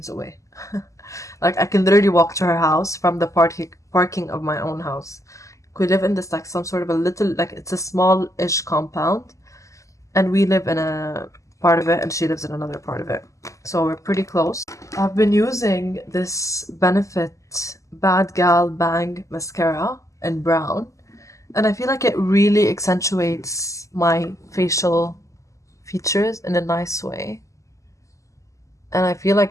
away. Like I can literally walk to her house from the parking of my own house. We live in this like some sort of a little, like it's a small-ish compound, and we live in a part of it and she lives in another part of it, so we're pretty close. I've been using this Benefit Bad Gal Bang mascara in brown, and I feel like it really accentuates my facial features in a nice way, and I feel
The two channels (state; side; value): late; right; 0.16 ms